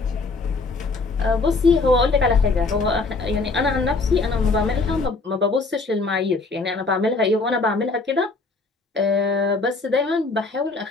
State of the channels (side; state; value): right; quieter; 3.8 dB